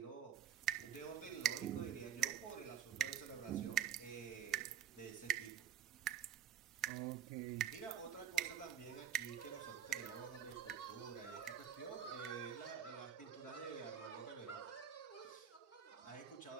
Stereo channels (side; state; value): left; quieter; 9.9 dB